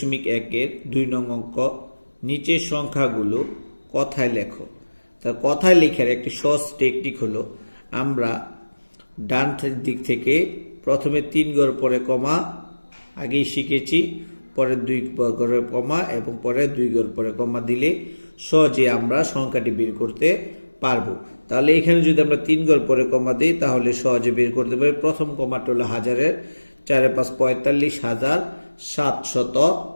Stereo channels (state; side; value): inverted; both; correlation -1.00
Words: 2 নং অঙ্ক। নিচের সংখ্যাগুলো কথায় লেখো। তা কথায় লেখার একটি সহজ টেকনিক হলো, আমরা ডান দিক থেকে প্রথমে 3 ঘর পরে কমা আগেই শিখেছি, পরে 2 ঘরে কমা এবং পরে 2 ঘর পরে কমা দিলে সহজে আমরা সংখ্যাটি বের করতে পারবো। তাহলে এখানে যদি আমরা 3 ঘর পরে কমা দিই তাহলে সহজে বের করতে পারি। প্রথম কমাটা হলো হাজারের 4 5